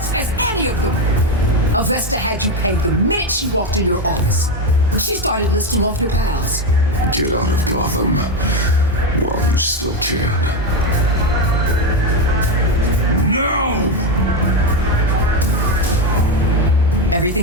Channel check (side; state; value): both; normal; correlation 0.11